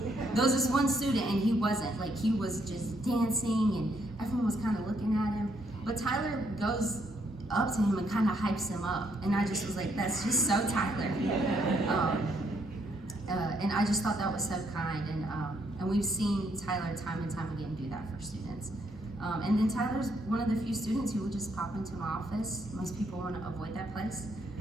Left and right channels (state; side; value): normal; both; correlation 0.73